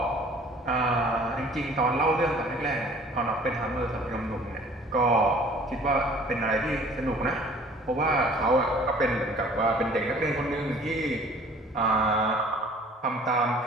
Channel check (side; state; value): both; normal; correlation 0.51